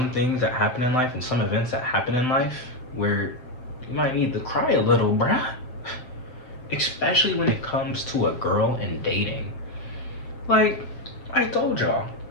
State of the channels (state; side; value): late; right; 7.8 ms